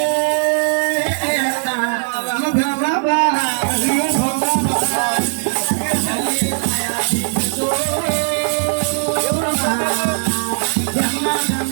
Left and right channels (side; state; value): left; silent; digital silence